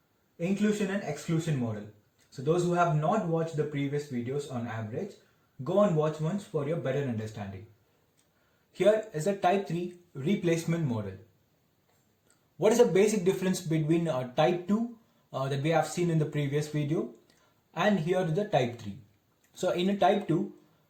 Inclusion and Exclusion Model. So those who have not watched the previous videos on average, go and watch once for your better understanding. Here is a Type 3 Replacement Model. What is the basic difference between type 2 that we have seen in the previous video and here the type 3? So in a type 2,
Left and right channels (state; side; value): identical; both; correlation 1.00